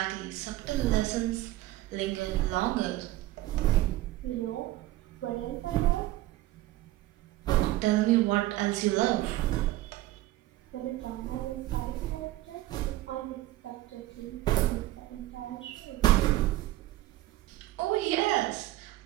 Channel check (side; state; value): left; quieter; 16.3 dB